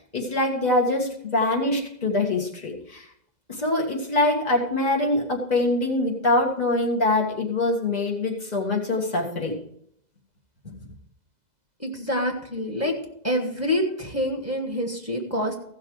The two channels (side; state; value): left; late; 2.0 ms